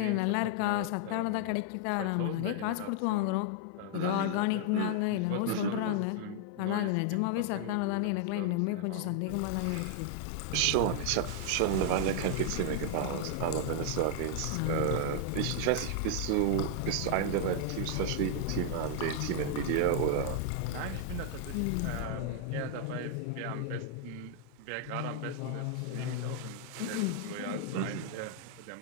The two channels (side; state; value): both; different; correlation 0.00